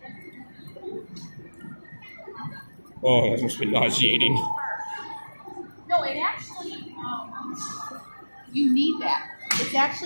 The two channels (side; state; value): both; inverted; correlation -1.00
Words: Oh, that must be nauseating. No, it actually, you need that. It's